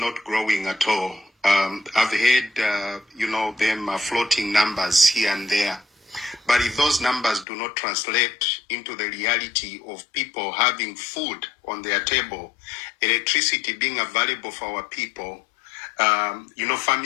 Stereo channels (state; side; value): drops out; right; at 7.5 s